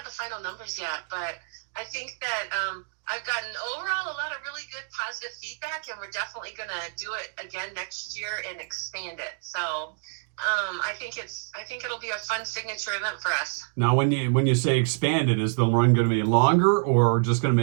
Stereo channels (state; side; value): silent; left; digital silence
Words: the final numbers yet, but I think that I've gotten overall a lot of really good positive feedback, and we're definitely going to do it again next year and expand it. So I think it'll be a fun signature event for us. Now, when you say expanded, is the run going to be longer, or just going to